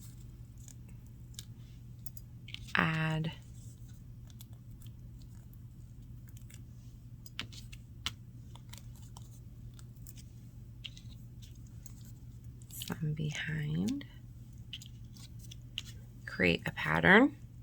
add some behind, create a pattern.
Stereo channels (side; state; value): both; identical; correlation 1.00